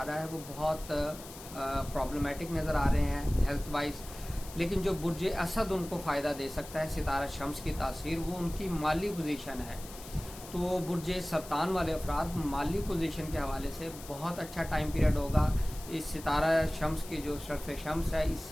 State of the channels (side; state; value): left; noise; hiss, 15 dB below the sound